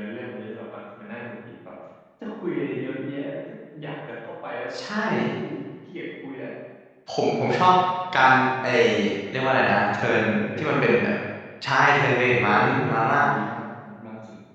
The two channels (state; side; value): identical; both; correlation 1.00